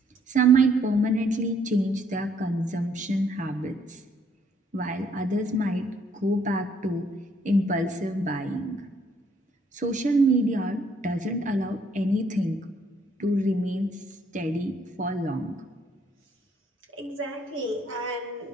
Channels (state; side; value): normal; both; correlation 0.67